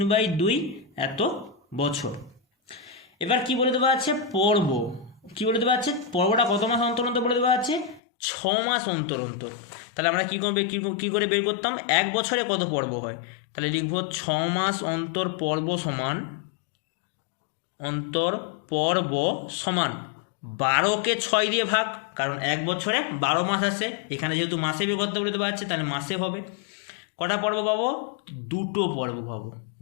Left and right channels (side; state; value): right; drops out; at 8.0 s